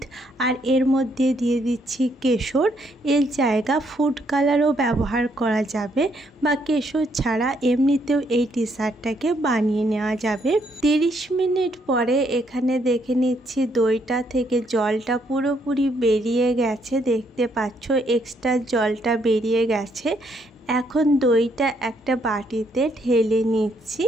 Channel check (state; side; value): normal; both; correlation 0.72